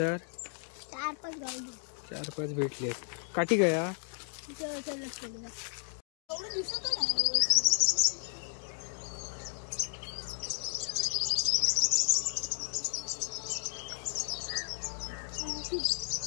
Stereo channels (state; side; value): silent; right; 55 dB below the other